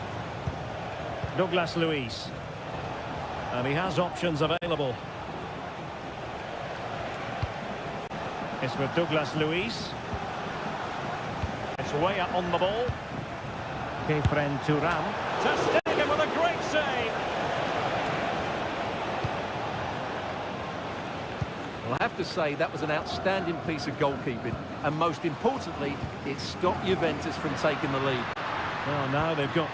Douglas Luiz. And he has options available. It's with Douglas Luiz. It's Weah on the ball. Kefren Turam. Ter Stegen with a great save. Well, I have to say that was an outstanding piece of goalkeeping. And most importantly, it stopped Juventus from taking the lead. Well, now they've got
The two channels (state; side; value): identical; both; correlation 1.00